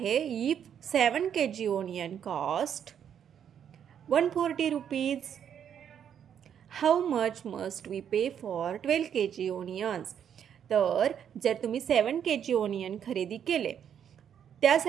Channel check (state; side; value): quieter; left; 8.7 dB